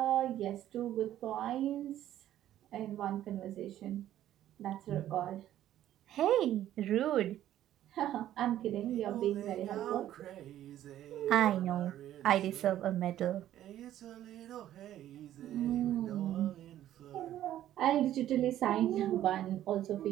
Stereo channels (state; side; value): quieter; left; 12.4 dB